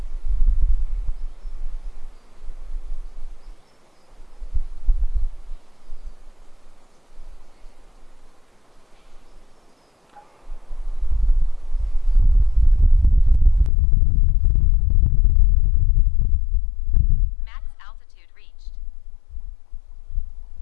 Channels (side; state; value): right; drops out; at 13.7 s